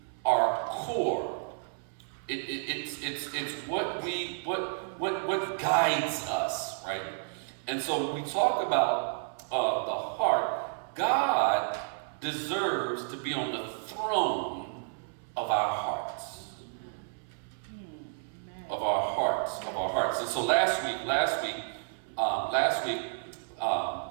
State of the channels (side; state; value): left; silent; 57 dB below the other